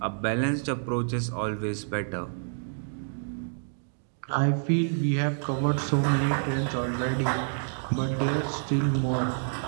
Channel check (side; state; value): left; silent; digital silence